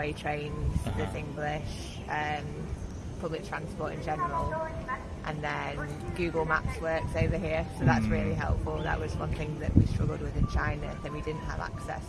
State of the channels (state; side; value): identical; both; correlation 1.00